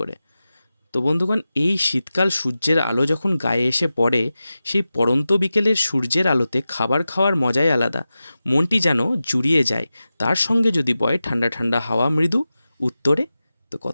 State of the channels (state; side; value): inverted; both; correlation -0.94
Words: করে। তো বন্ধুগণ, এই শীতকাল সূর্যের আলো যখন গায়ে এসে পড়ে, সেই পড়ন্ত বিকেলের সূর্যের আলোতে খাবার খাওয়ার মজাই আলাদা। মনটি যেন জুড়িয়ে যায়। তার সঙ্গে যদি বয় ঠান্ডা ঠান্ডা হাওয়া মৃদু উত্তরে, তো